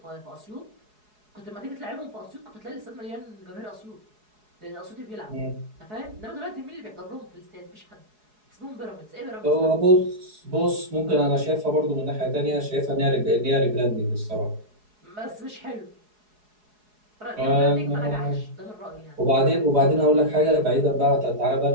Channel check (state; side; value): late; left; 4.7 ms